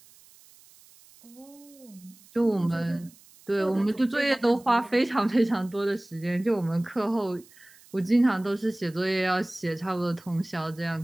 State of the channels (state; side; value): noise; right; hiss, 26 dB below the sound